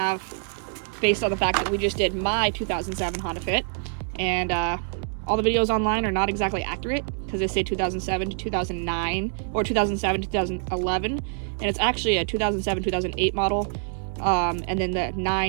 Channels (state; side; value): silent; left; 61 dB below the other